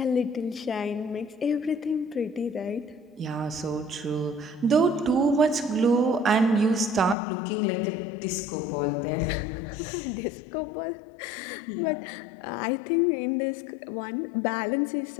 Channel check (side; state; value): right; drops out; at 7.2 s